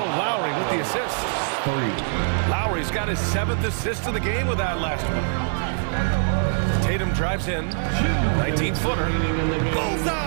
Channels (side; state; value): left; silent; digital silence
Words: Lowry with the assist. Lowry's got his 7th assist of the game with that last one. Tatum drives in. 19-footer.